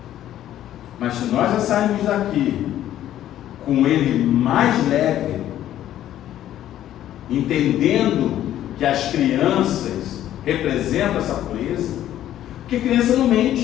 Mas se nós já sairmos daqui com ele mais leve, entendendo que as crianças representam essa pureza, porque criança não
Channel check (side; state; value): right; quieter; 12.2 dB